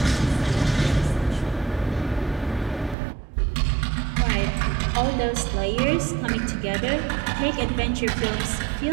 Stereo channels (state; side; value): drops out; left; at 3.0 s